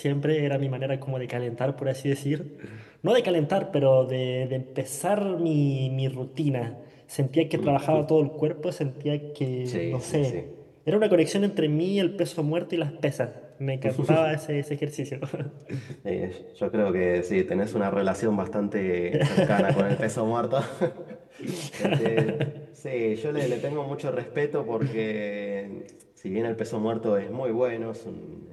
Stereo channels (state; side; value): identical; both; correlation 1.00